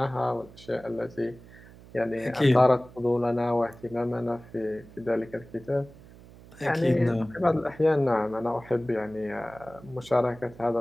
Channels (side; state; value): right; noise; hum, 21 dB below the sound